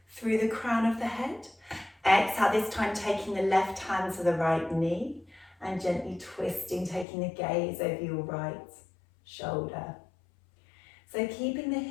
through the crown of the head. Exhale, this time taking the left hand to the right knee and gently twisting, taking the gaze over your right shoulder. So keeping the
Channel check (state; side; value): drops out; right; at 7.1 s